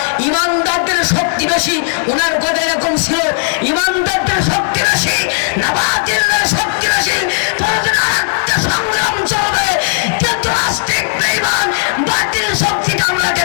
ইমানদারদের শক্তি বেশি। উনার কথা এরকম ছিল, ইমানদারদের শক্তি বেশি না বাতিলের শক্তি বেশি? আরেকটা সংগ্রাম চলবে, কিন্তু নাস্তিক বেঈমান বাতিল শক্তিটা আমরা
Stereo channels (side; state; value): right; silent; digital silence